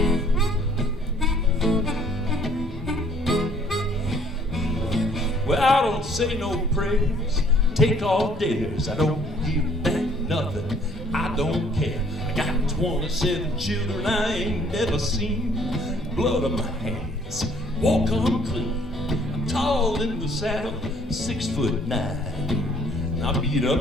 Well, I don't say no prayers, take all dares. I don't give back nothing, I don't care. I got 27 children I ain't never seen. Blood on my hands, walk unclean. I'm tall in the saddle, 6'9". I beat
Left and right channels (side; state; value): both; normal; correlation 0.60